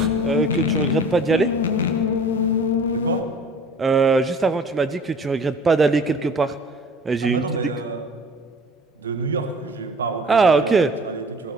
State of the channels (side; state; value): both; normal; correlation 0.47